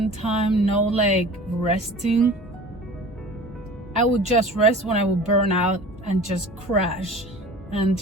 time, no like resting. I would just rest when I would burn out and just crash and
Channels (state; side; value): normal; both; correlation 0.41